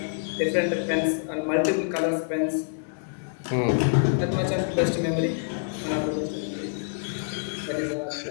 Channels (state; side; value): silent; right; digital silence